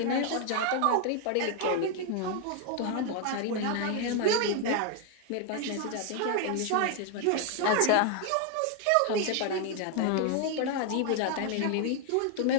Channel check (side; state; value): both; different; correlation 0.00